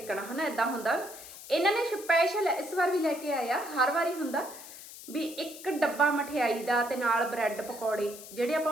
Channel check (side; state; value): left; noise; hiss, 15 dB below the sound